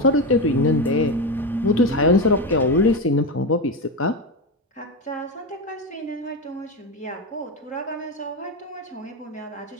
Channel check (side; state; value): both; normal; correlation 0.16